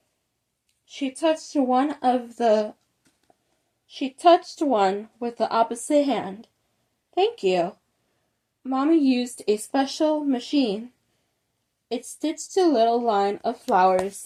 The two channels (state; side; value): identical; both; correlation 1.00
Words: She touched one with the opposite hand. Thank you. Mommy used a special machine. It stitched a little line of flowers